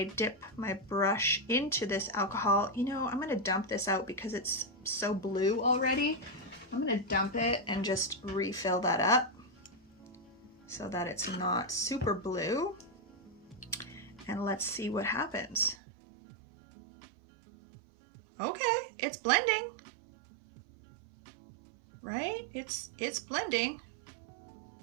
dip my brush into this alcohol, you know, I'm gonna dump this out because it's so blue already. I'm gonna dump it and just refill that up so that it's not super blue. And let's see what happens. Okay, it's blending, right? It's blending.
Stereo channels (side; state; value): left; drops out; at 15.8 s